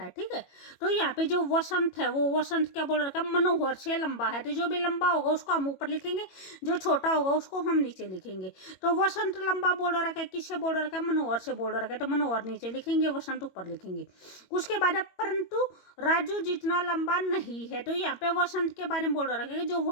ठीक है, तो यहाँ पे जो वसंत है वो वसंत क्या बोल रखा है? मनोहर से लंबा है। तो जो भी लंबा होगा उसको हम ऊपर लिखेंगे, जो छोटा होगा उसको हम नीचे लिखेंगे। तो वसंत लंबा बोल रखा है, किससे बोल रखा है? मनोहर से बोल रखा है, तो मनोहर नीचे लिखेंगे, वसंत ऊपर लिखेंगे। उसके बाद परंतु राजू जितना लंबा नहीं है। तो यहाँ पे वसंत के बारे में बोल रखा है, जो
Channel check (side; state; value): right; late; 22 ms